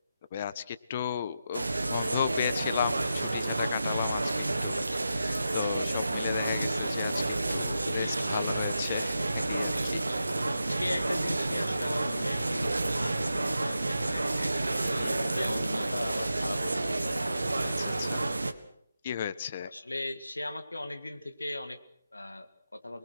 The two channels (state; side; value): inverted; both; correlation -0.88